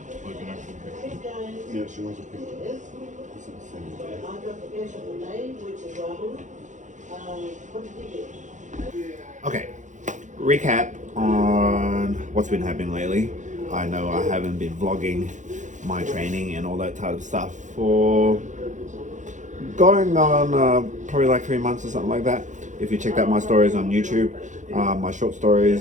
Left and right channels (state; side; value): late; left; 0.36 ms